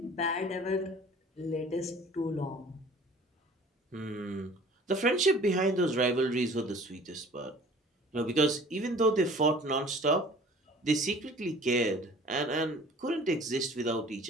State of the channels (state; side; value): normal; both; correlation 0.48